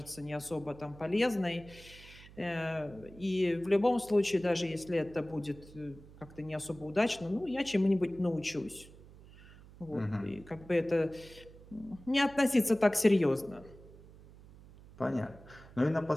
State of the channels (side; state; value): right; noise; hum, 20 dB below the sound